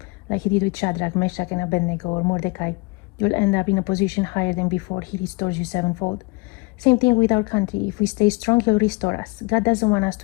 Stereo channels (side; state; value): right; quieter; 27.5 dB